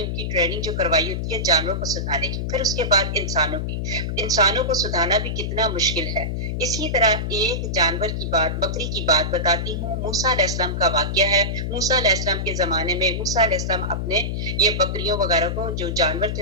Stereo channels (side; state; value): left; noise; hum, 2 dB below the sound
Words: ان کی ٹریننگ جو کروائی ہوتی ہے جانوروں کو سکھانے کی، پھر اس کے بعد انسانوں کی۔ انسانوں کو سکھانا بھی کتنا مشکل ہے۔ اسی طرح ایک جانور کی بات، بکری کی بات بتاتی ہوں۔ موسیٰ علیہ السلام کا واقعہ ہے۔ موسیٰ علیہ السلام کے زمانے میں موسیٰ علیہ السلام اپنے یہ بکریوں وغیرہ کو، جو جانور